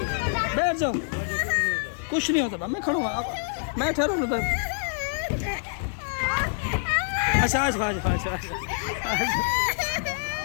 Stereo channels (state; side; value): silent; right; digital silence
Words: जाओ कुछ नहीं होता मैं खड़ा हूँ मैं ठहरा हूँ अच्छा आज